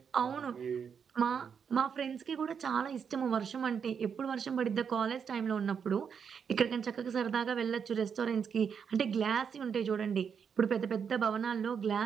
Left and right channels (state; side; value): quieter; left; 6.9 dB